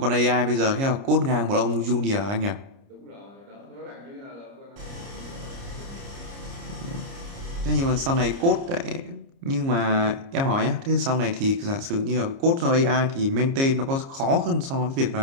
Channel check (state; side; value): late; left; 29 ms